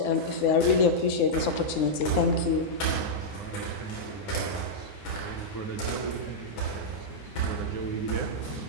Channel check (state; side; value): late; right; 9.7 ms